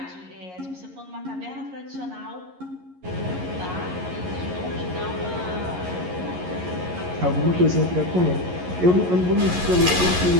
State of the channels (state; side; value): late; left; 11 ms